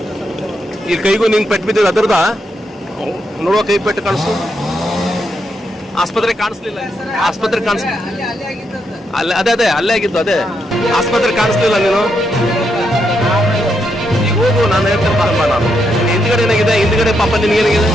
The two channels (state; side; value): normal; both; correlation 0.80